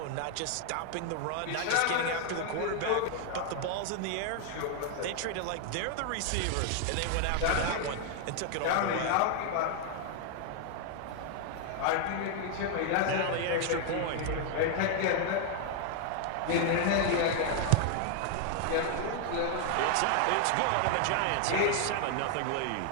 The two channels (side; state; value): both; different; correlation 0.00